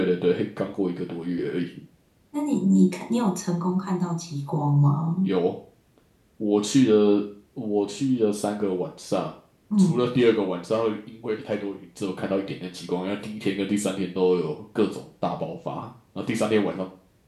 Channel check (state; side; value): identical; both; correlation 1.00